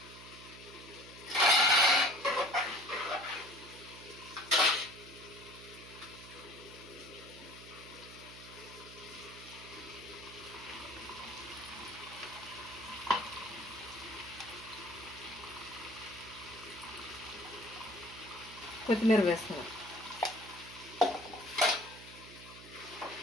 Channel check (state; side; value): noise; right; hum, 16 dB below the sound